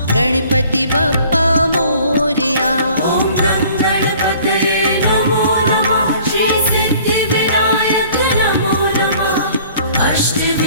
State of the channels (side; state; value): both; inverted; correlation -0.53